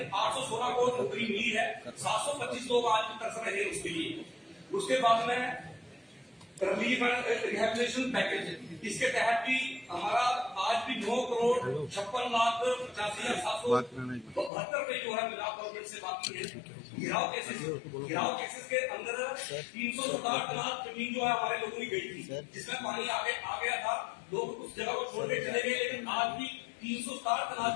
816 को नौकरी मिली है, 725 लोग आज भी तरस रहे हैं उसके लिए। उसके बाद में रिलीफ एंड रिहेबिलिटेशन पैकेज, इसके तहत भी हमारा आज भी 9,56,85,772 रुपए जो है मिलाप गवर्नमेंट से बाकी है। गिराव केसेस के अंदर 367 लाख जमीन जो है हमारे लोगों की गई थी, जिसमें पानी आ गया था, लोग उस जगह को छोड़ के चले गए, लेकिन आज भी 367 लाख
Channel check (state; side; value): drops out; right; at 14.5 s